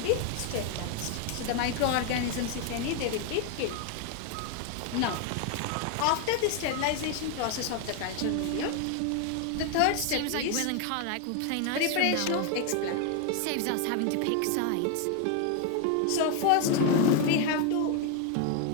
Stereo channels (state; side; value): different; both; correlation 0.01